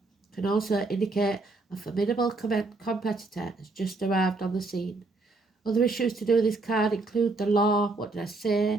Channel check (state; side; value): quieter; left; 3.3 dB